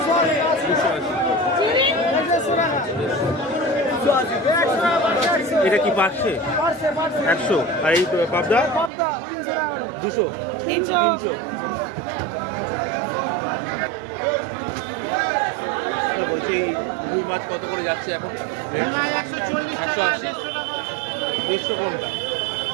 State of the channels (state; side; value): drops out; left; at 8.9 s